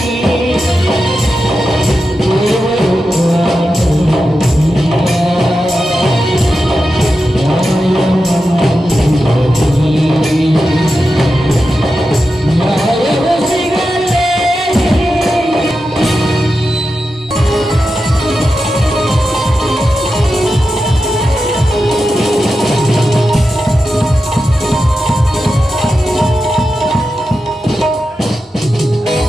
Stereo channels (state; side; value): normal; both; correlation 0.90